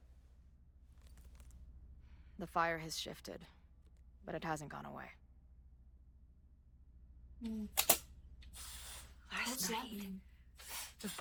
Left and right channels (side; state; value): both; identical; correlation 1.00